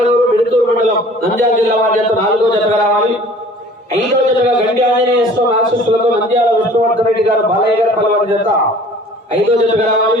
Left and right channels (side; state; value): both; normal; correlation 0.49